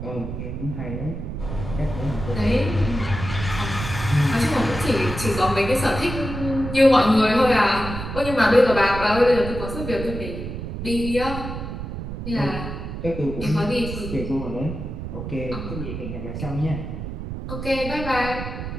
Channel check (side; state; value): right; noise; rumble, 7 dB below the sound